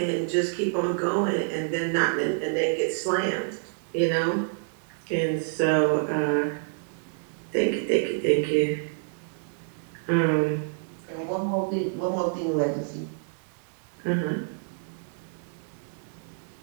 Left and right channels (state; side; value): silent; left; digital silence